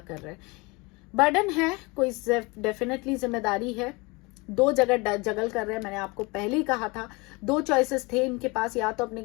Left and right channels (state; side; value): quieter; right; 26.3 dB